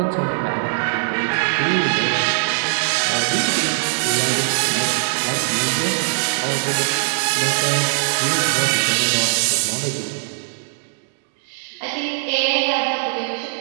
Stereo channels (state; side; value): silent; left; digital silence